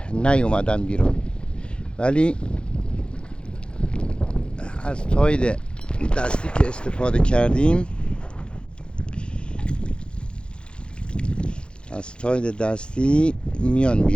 نیومدن بیرون، ولی از تاید دستی که استفاده کردیم، از تاید دستی میان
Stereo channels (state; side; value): late; right; 0.054 ms